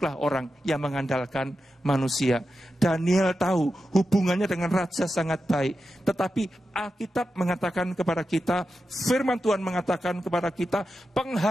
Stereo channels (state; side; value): normal; both; correlation 0.90